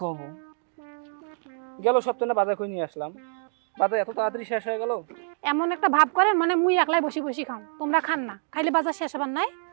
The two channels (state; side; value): silent; left; digital silence